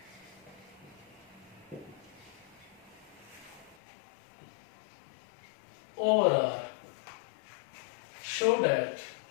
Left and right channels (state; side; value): drops out; right; at 3.8 s